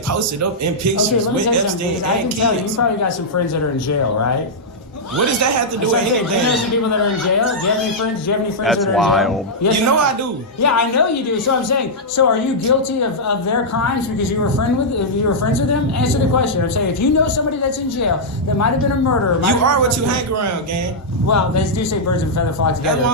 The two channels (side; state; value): both; normal; correlation -0.07